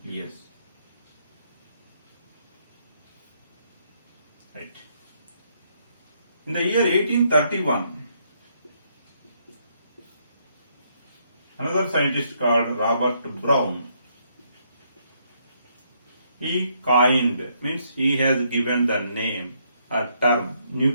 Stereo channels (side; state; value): both; inverted; correlation -0.73